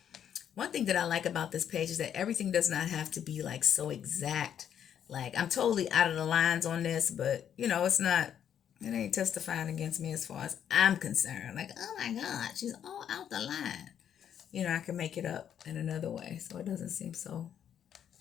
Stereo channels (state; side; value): quieter; right; 9.2 dB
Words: One thing that I like about this page is that everything does not have to be like so exact. Like, I'm totally out of the lines on this, but it's not, it ain't testifying against me as far as I'm concerned. Like, oh my God, she's all out the line. I can make it up in another way, so it doesn't seem so